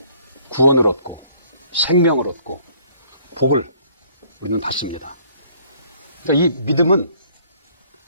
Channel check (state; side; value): inverted; both; correlation -0.61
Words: 구원을 얻고 생명을 얻고 복을 우리는 받습니다. 그러니까 이 믿음은,